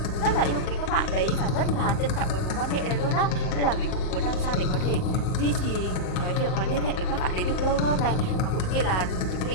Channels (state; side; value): late; right; 38 ms